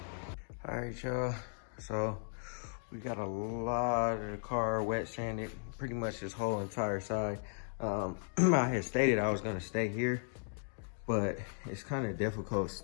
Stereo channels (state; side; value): silent; right; digital silence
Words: All right, y'all. So we got a lot of the car wet sanded, pretty much this whole entire side. I had stated I was gonna stay here, but it's kind of difficult